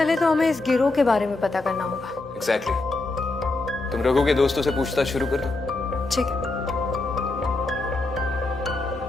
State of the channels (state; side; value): quieter; right; 3.1 dB